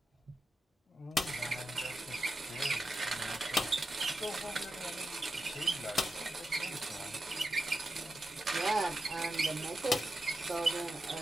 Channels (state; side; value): normal; both; correlation 0.88